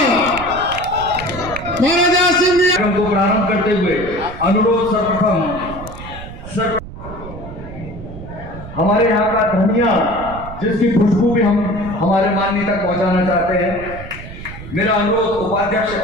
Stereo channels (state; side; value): noise; right; rumble, 13 dB below the sound